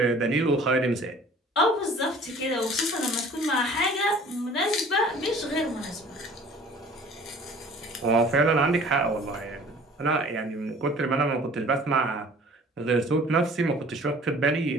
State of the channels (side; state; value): both; normal; correlation 0.49